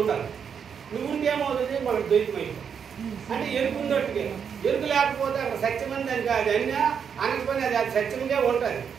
ఉండాలి. నువ్వు ఉంటేమవుతుంది మనకు ద్వైతమైంది అంటే ఎరుకు ఉన్నట్టుగా. ఎరుకు లేకపోతే అక్కడ సత్యమని దానికి అది అన్నా అనకపోయినా అది సత్యముగా ఉంటుంది,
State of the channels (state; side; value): quieter; left; 7.2 dB